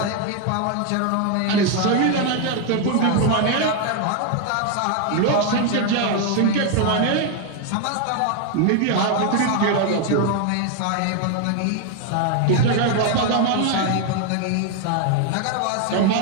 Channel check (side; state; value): both; different; correlation 0.01